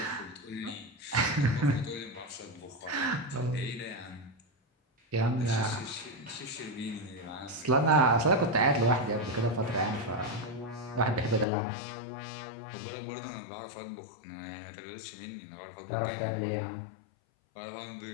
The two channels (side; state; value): right; drops out; at 11.5 s